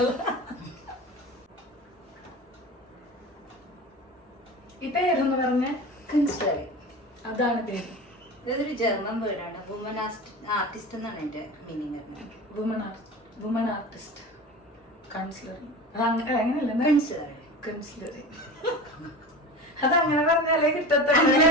ഈ പേരെന്ന് പറഞ്ഞ കൺസ്ട്രൈ, അതാണ് പേര്. ഇതൊരു ജർമ്മൻ വേർഡാണ്. വുമൻ ആർട്ടിസ്റ്റ് എന്നാണ് എന്റെ മീനിങ്. Woman artist കൺസിലറിങ്. അത് അങ്ങനെയല്ല, അതങ്ങനെ പറഞ്ഞാലേ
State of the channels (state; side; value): normal; both; correlation 0.32